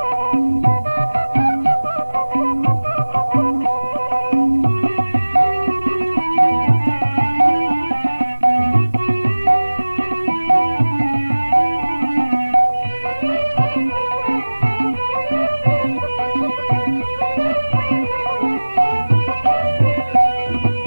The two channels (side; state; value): both; inverted; correlation -1.00